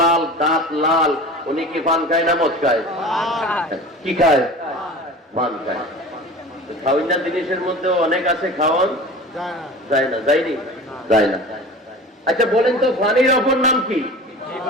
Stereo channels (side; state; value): both; normal; correlation 0.37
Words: লাল, দাঁত লাল, উনি কি পান খায় না মদ খায়? কি খায়? পান খায়। খাওয়াইনা জিনিসের মধ্যে অনেক আছে, খাওয়ান যায় না, যায়নি, যায় না। আচ্ছা বলেন তো, পানির অপর নাম কি?